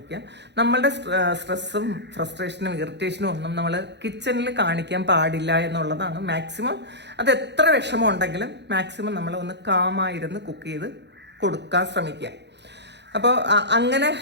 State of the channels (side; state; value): left; late; 0.50 ms